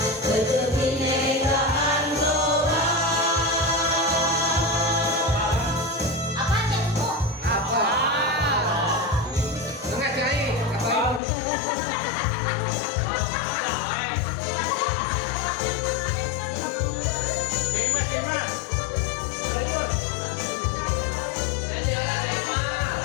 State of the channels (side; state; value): right; drops out; at 11.2 s